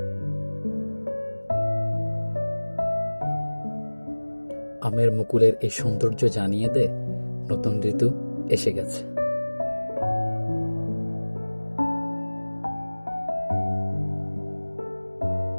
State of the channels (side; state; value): both; inverted; correlation -1.00